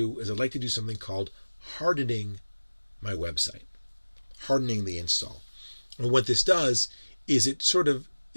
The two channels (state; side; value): inverted; both; correlation -1.00